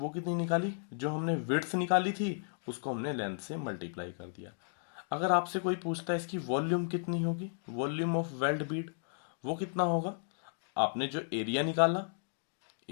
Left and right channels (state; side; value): silent; right; digital silence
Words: कितनी निकाली, जो हमने विड्थ निकाली थी उसको हमने लेंथ से मल्टीप्लाई कर दिया। अगर आपसे कोई पूछता है इसकी वॉल्यूम कितनी होगी, वॉल्यूम ऑफ वेल्ड बीड, वो कितना होगा, आपने जो एरिया निकाला,